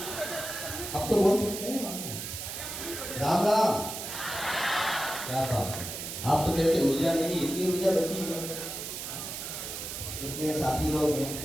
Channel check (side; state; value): right; noise; hiss, 6 dB below the sound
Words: अब तो बोल सकते हैं राम राम। क्या बात है, आप तो कहते ऊर्जा नहीं, इतनी ऊर्जा बची है। इतने साथी लोग हैं,